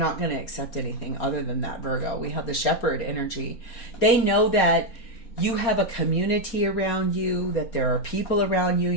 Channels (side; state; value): right; late; 4.3 ms